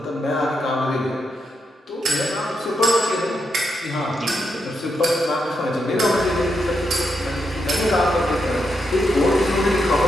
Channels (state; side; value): normal; both; correlation 0.83